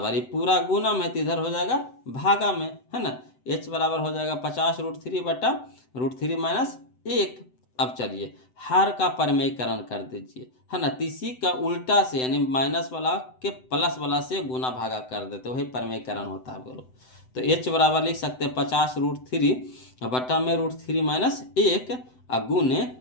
ये पूरा गुना में तो इधर हो जाएगा भागा में, है ना, h बराबर हो जाएगा 50 √3 बटा √3 माइनस 1। अब चलिए हर का परमेयकरण कर दीजिए, है ना, इसी का उल्टा से यानी माइनस वाला के प्लस वाला से गुना भागा कर देते, वही परमेयकरण होता है बोलो। तो h बराबर लिख सकते हैं 50 √3 बटा में √3 माइनस 1 गुने,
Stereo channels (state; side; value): late; right; 7.9 ms